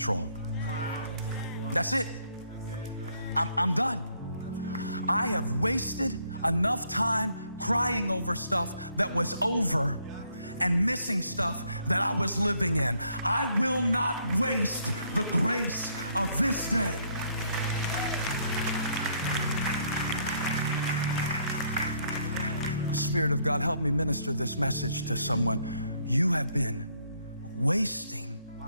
That's it. I'm done. I have wasted enough time crying over stuff that was over and missing stuff that I was living in. I will not waste the grace of this day. Spirit of God, help me minister this message to someone. You have been wasting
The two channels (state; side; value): inverted; both; correlation -0.70